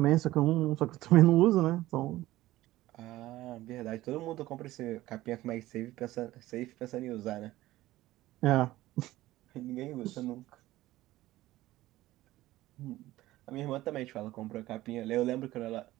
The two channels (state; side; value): quieter; left; 16.5 dB